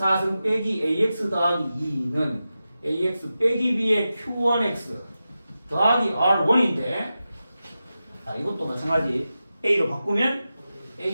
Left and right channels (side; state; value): both; inverted; correlation -0.92